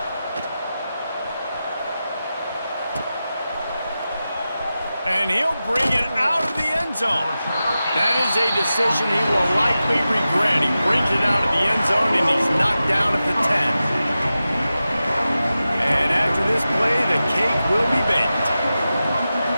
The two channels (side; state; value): both; inverted; correlation -0.93